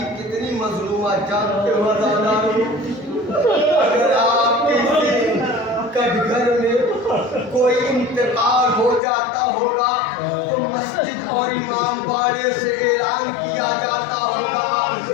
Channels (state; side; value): drops out; right; at 9.0 s